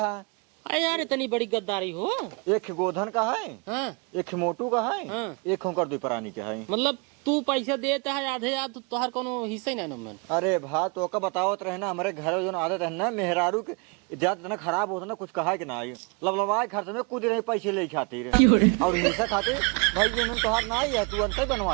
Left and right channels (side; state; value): left; quieter; 32.5 dB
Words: अरे यार इतनी बड़ी गद्दारी हो एक गोधन का है हाँ एक मोटू का है हाँ। एक होकर दो प्राणी का है मतलब तू पैसा देता है आधे याद तोहर कोनो हिस्सा ही नहीं मन अरे भा तो का बतावत रहे ना हमारे घर जो आदत है ना मेहरारू के ज्यादा इतना खराब होता ना कुछ कहा कि ना आई लबलबाए खर्च में कूद रहे पैसे ले खातिर और हिस्सा खातिर भाई ये मन तोहार ना आई है तू अंत